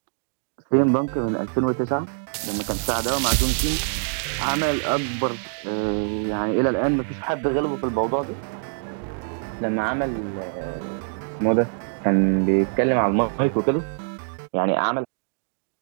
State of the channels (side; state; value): left; silent; 62 dB below the other